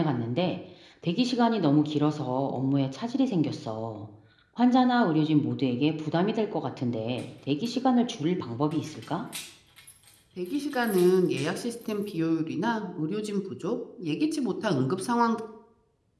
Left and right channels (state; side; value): identical; both; correlation 1.00